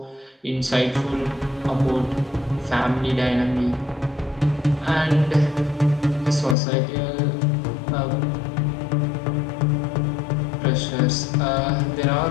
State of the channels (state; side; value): drops out; right; at 6.6 s